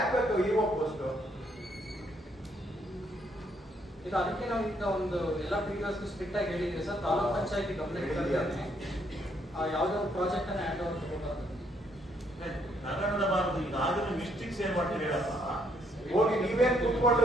ಬೇಕು ಇಒ ಪೋಸ್ಟ್? ಈಗ ಅದಕ್ಕೆ ನಾವು ಈಗ ಒಂದು ಎಲ್ಲ ಪಿಡಿಒಸ್ ಸ್ಟ್ರಿಕ್ಟ್ ಆಗಿ ಹೇಳಿದ್ವಿ ಸರ್. ತಾಲೂಕ್ ಪಂಚಾಯತಿ ಗಮನಕ್ಕೆ ತರ್ತೇನೆ. ಯಾವುದೋ ಒಂದು ಪ್ರಾಜೆಕ್ಟ್ ಅನ್ನ ಹ್ಯಾಂಡ್ ಓವರ್ ತಗೋಬಾರ್ದು. ತಗೊಂಡಬಾರದು. ಈಗ ಆದ್ರೂ ಮಿಸ್ಟೇಕ್ಸ್ ಏನ್ ಮಾಡ್ತೀವಿ ಹೇಳಪ್ಪ. ಹೋಗಿ ನೀವೇನ್ ಕುತ್ಕೊಂಡು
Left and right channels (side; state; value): both; normal; correlation 0.71